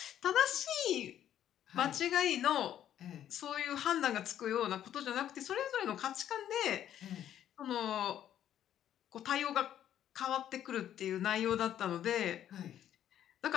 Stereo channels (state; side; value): quieter; right; 10.9 dB